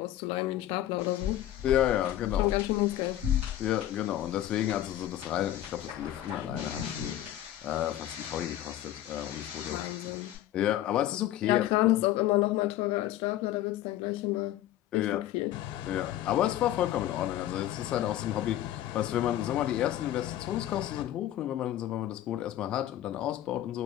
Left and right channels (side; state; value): right; quieter; 13.0 dB